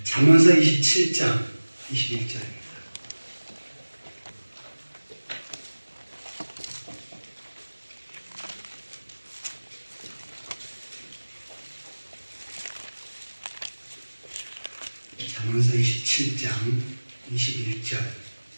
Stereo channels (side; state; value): both; inverted; correlation -1.00